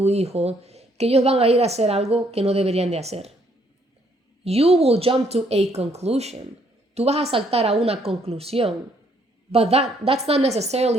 hijo que ellos van a ir a hacer algo que no deberían de hacer. You will jump to a conclusion. Tú vas a saltar a una conclusión. But that's not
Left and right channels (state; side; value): normal; both; correlation 0.68